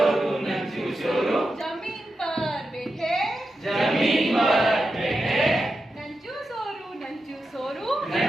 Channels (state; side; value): normal; both; correlation 0.89